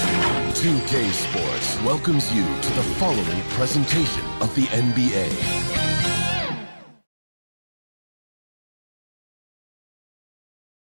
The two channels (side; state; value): both; inverted; correlation -1.00